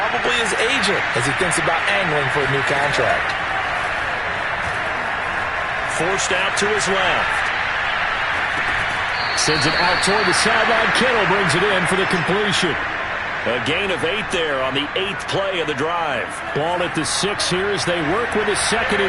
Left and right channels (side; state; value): both; identical; correlation 1.00